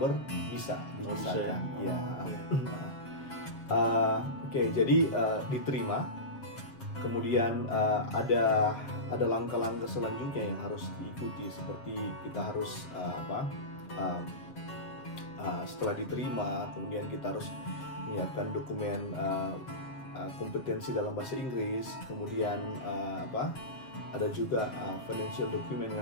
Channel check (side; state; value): right; late; 7.4 ms